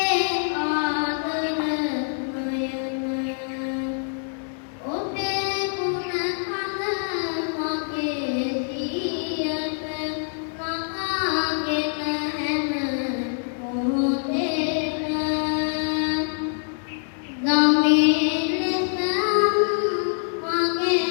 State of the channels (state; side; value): silent; right; digital silence